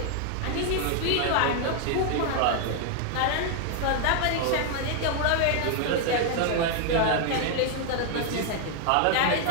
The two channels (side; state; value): both; different; correlation 0.00